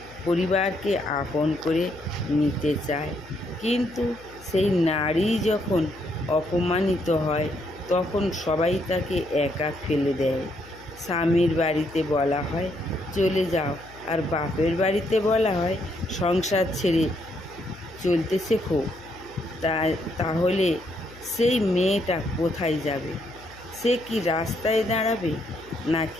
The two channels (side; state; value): left; noise; hum, 21 dB below the sound